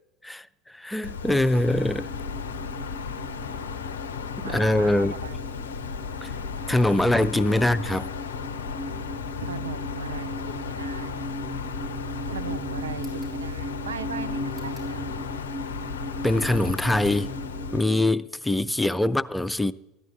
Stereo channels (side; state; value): both; normal; correlation 0.73